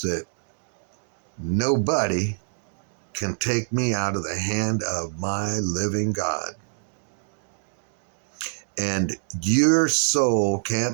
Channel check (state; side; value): silent; left; digital silence